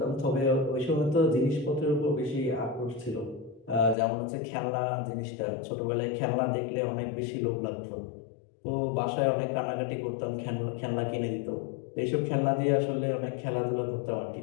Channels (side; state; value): right; drops out; at 4.0 s